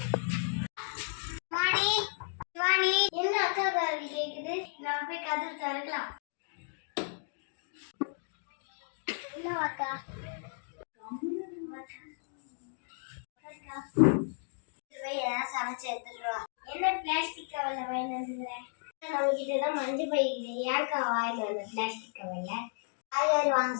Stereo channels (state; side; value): silent; right; digital silence